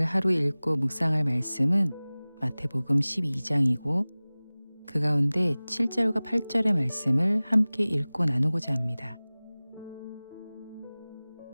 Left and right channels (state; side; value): inverted; both; correlation -0.99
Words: 하루 읽고 묵상할 말씀은 마태복음 12장이고 그 가운데 7절과 8절의 말씀을 함께 읽고 나누고자 합니다.